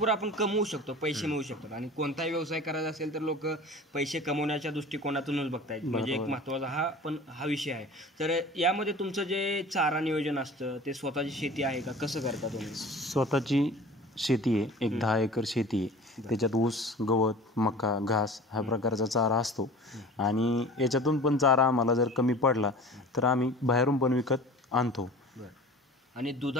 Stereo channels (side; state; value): both; normal; correlation 0.41